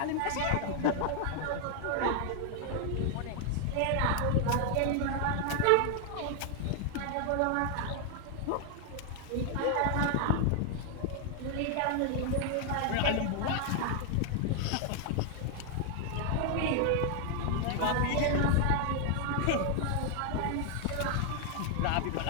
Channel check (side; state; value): both; different; correlation 0.00